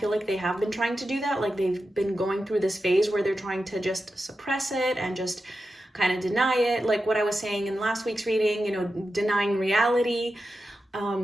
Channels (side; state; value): both; normal; correlation 0.91